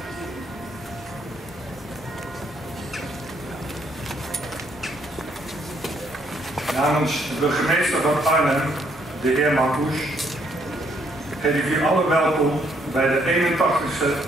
Namens de burgemeester van Arnhem, de heer Marcouch, heet ik u allen welkom bij de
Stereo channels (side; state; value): both; normal; correlation 0.70